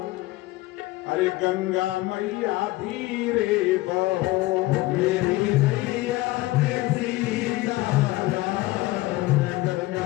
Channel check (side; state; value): right; quieter; 19.0 dB